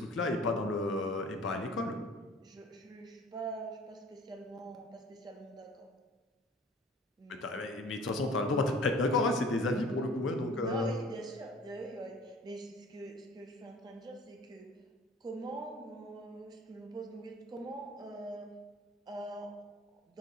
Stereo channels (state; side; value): normal; both; correlation 0.48